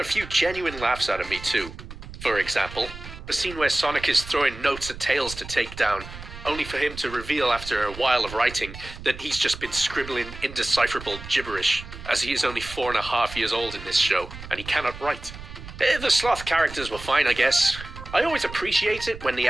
few genuine laughs out of me too. For example, the scene where Sonic is throwing notes at Tails to take down, only for him to reveal after a while of writing that he's just been scribbling indecipherable gibberish, as he is only 4.5 years old in this show, and he cannot write. The sloth characters were fine, I guess. I always appreciate it when the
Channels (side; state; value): right; noise; rumble, 13 dB below the sound